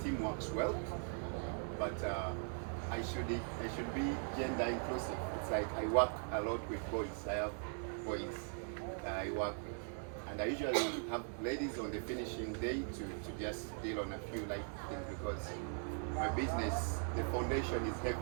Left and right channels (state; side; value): silent; left; 51 dB below the other